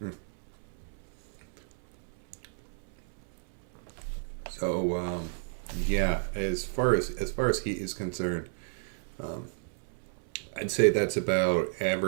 Mm. So yeah, as far as heat is concerned, um, I'd say that's about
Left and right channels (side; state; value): left; silent; 57 dB below the other